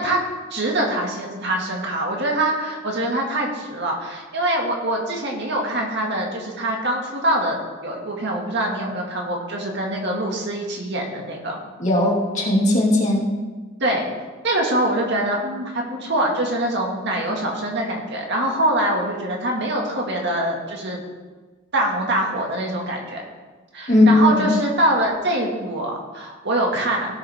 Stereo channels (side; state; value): both; normal; correlation 0.23